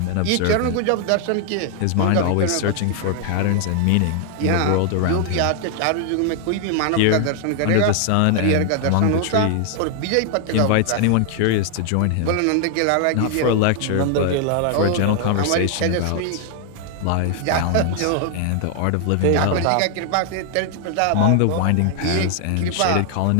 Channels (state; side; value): different; both; correlation 0.00